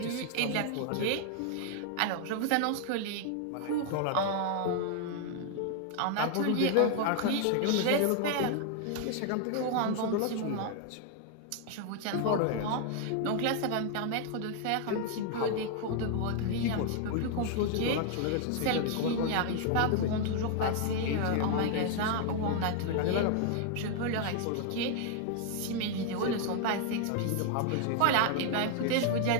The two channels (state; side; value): different; both; correlation 0.00